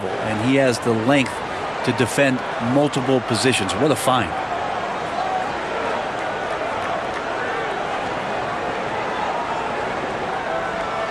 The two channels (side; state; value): both; identical; correlation 1.00